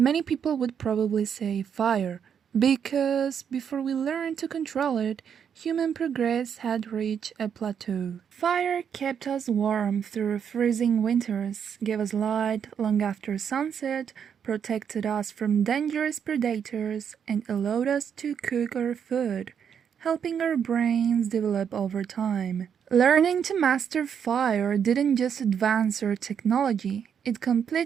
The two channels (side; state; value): left; quieter; 7.8 dB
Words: people would probably say fire, because before we learned to control it, human progress had reached a plateau. Fire kept us warm through freezing winters, gave us light long after sunset, protected us from dangerous predators, and allowed us to cook our food, helping our brains develop over time. Learning to master fire didn't just advance our technology, it